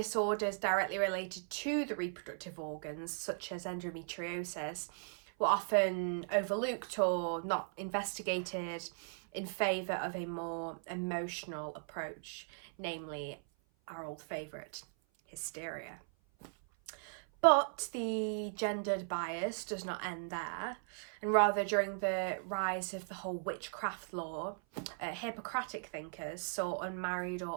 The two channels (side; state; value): left; silent; 53 dB below the other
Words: directly related to the reproductive organs, such as endometriosis, were often overlooked or not investigated in favour of a more emotional approach, namely our old favourite, hysteria. But the gendered bias does not end there, and rather during the rise of the whole witchcraft law, Hippocratic thinkers saw unmarried